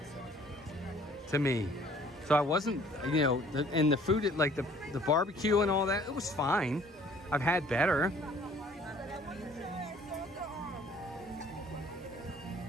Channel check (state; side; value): normal; both; correlation 0.56